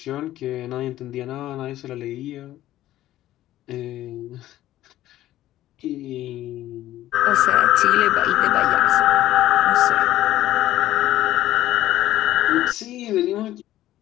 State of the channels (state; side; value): quieter; right; 14.2 dB